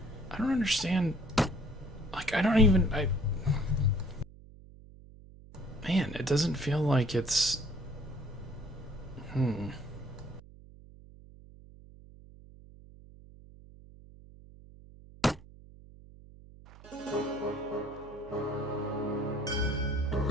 I don't understand. Like, I don't even... Man, it doesn't feel like it's...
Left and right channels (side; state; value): right; noise; hum, 20 dB below the sound